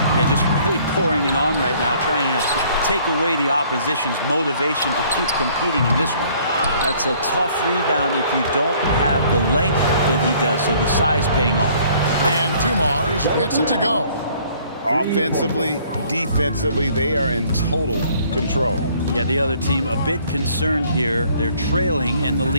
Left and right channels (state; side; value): inverted; both; correlation -0.59